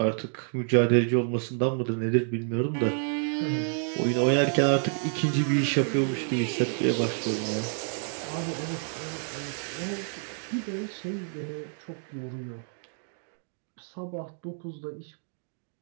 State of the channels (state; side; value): silent; left; 59 dB below the other